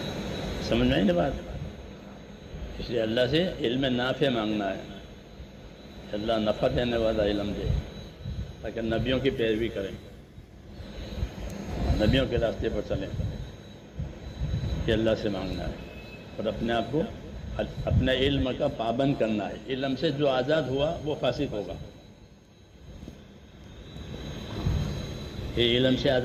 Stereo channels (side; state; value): both; identical; correlation 1.00